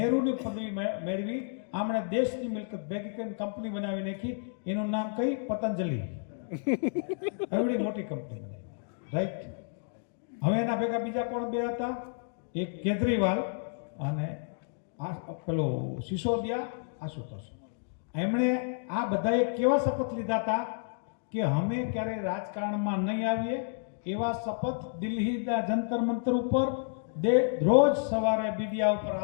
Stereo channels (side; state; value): right; silent; digital silence